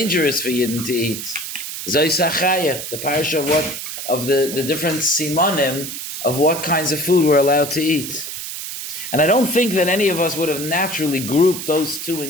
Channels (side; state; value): right; noise; hiss, 7 dB below the sound